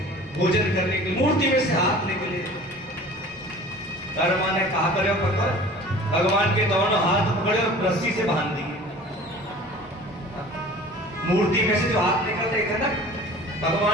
भोजन करने की, मूर्ति में से हाथ निकले। कर्मा ने कहा करे पकड़, भगवान के दोनों हाथ पकड़े और रस्सी से बांध दिए। मूर्ति में से जो हाथ निकल रहे थे ना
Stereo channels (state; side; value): normal; both; correlation 0.43